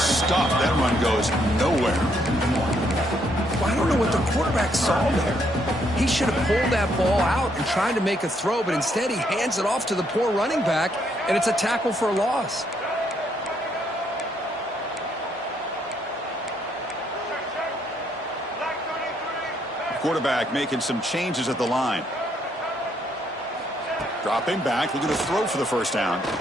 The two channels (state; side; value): normal; both; correlation 0.72